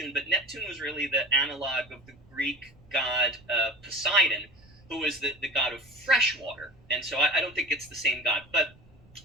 but Neptune was really the analog of the Greek god Poseidon, who was the god of fresh water, and so I don't think it's the same god. But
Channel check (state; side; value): noise; right; rumble, 26 dB below the sound